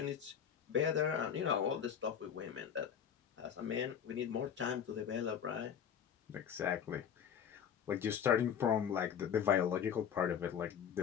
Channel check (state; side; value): quieter; right; 8.2 dB